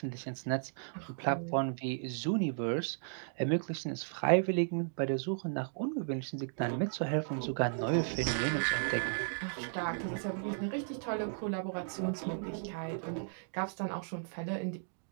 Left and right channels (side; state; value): left; silent; digital silence